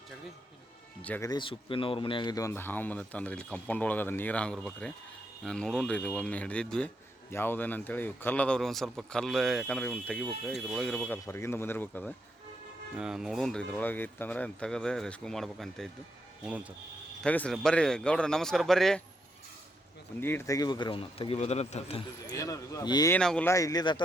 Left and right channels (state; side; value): normal; both; correlation 0.79